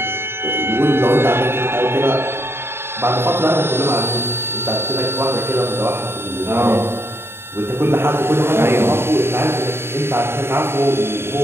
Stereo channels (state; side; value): late; left; 0.12 ms